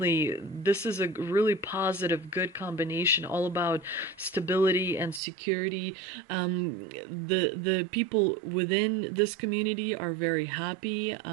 this is a really positive, good combination, all about stability and security. The people within this community are very happy.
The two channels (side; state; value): left; drops out; at 5.2 s